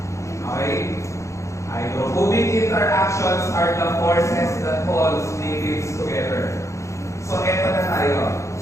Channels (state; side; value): late; right; 0.14 ms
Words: Okay? Hydrophobic interactions are the forces that hold liquids together. So, eto na tayo.